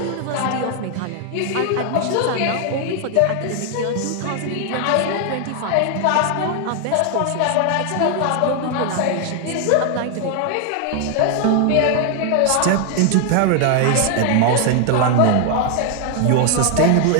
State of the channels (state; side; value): different; both; correlation 0.00